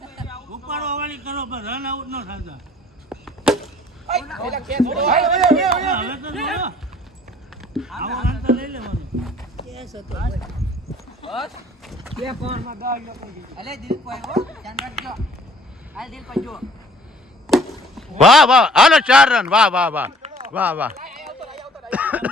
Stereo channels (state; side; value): normal; both; correlation 0.55